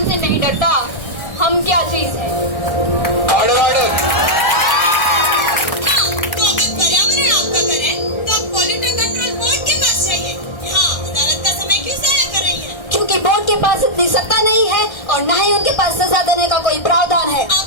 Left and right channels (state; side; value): late; right; 1.3 ms